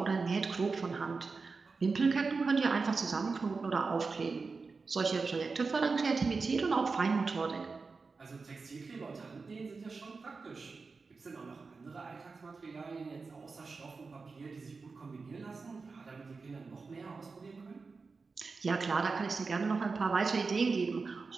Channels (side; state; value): left; quieter; 4.4 dB